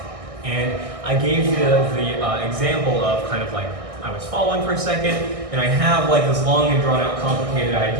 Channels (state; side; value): late; left; 1.6 ms